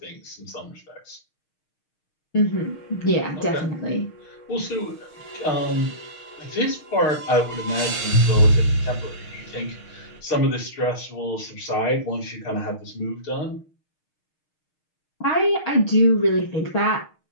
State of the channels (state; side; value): late; right; 6.5 ms